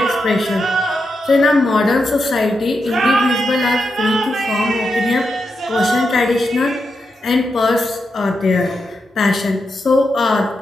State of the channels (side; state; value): both; normal; correlation 0.86